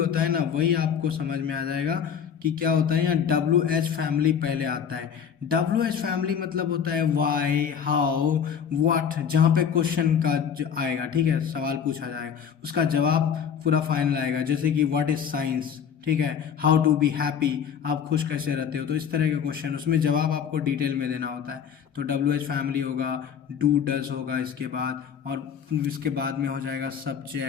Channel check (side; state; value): right; quieter; 7.7 dB